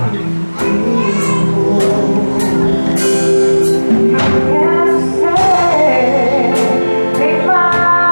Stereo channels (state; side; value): inverted; both; correlation -1.00